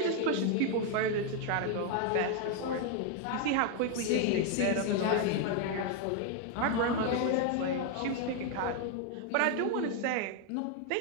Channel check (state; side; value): different; both; correlation 0.01